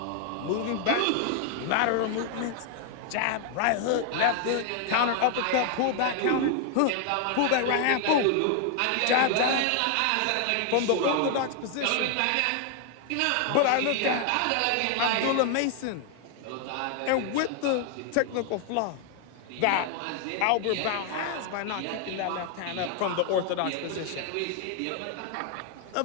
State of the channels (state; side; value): different; both; correlation 0.00